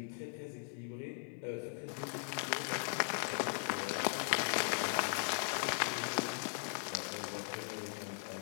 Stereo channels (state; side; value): silent; right; digital silence